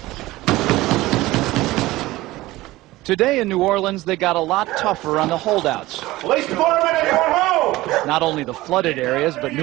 Today in New Orleans, they got a lot tougher on the holdouts. Police department, everyone home! Not only the flooded areas, but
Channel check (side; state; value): left; quieter; 18.2 dB